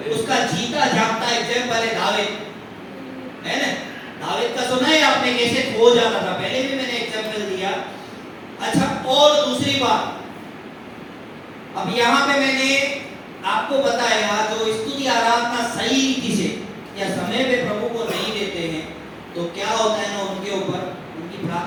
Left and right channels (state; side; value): identical; both; correlation 1.00